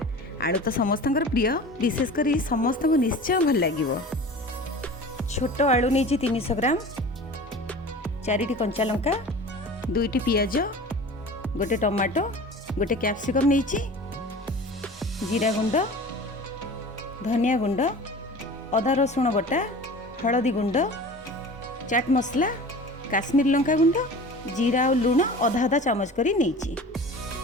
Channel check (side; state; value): both; normal; correlation 0.38